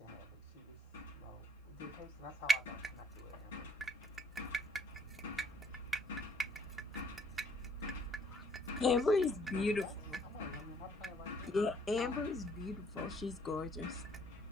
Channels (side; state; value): both; normal; correlation 0.65